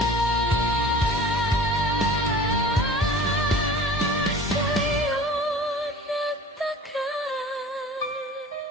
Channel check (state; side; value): normal; both; correlation 0.42